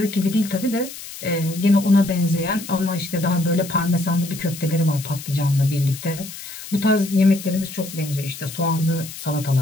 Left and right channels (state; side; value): noise; left; hiss, 12 dB below the sound